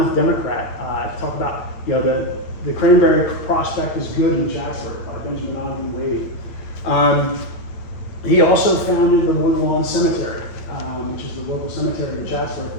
Democrat, to talk about, the cranberry prospect is good in Chatsworth by Benjamin Ogden Wade. He also founded the Woodland Cemetery, which is the local cemetery in Chatsworth,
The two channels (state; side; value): late; right; 8.7 ms